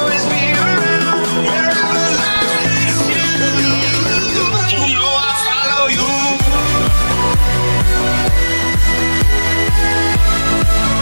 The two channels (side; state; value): both; inverted; correlation -1.00